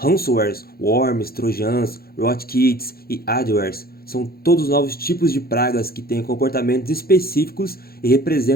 worms, trojans, rootkits e adwares são todos novos tipos de pragas que têm comportamentos específicos e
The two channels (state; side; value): late; right; 0.44 ms